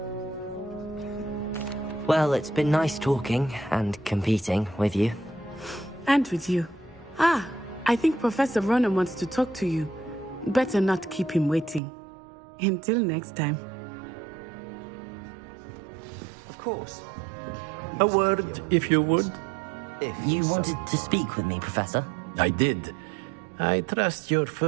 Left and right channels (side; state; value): left; drops out; at 11.8 s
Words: Well, it's been nice talking and competing with you. And with you. Ah, I think Professor Ronan wants to talk to you. Better not keep him waiting. Until next time. Of course, you can use A word, if you would. If You so wanted to speak with me, Professor? I did. I trust your